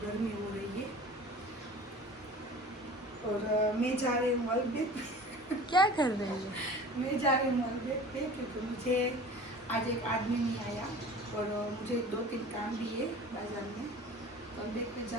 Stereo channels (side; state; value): both; normal; correlation 0.41